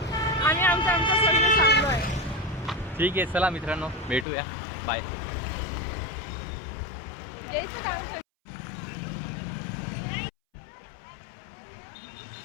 आणि आमच्या सोयीने चाललो आहे. ठीक आहे, चला मित्रांनो भेटूया, बाय.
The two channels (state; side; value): drops out; right; at 4.2 s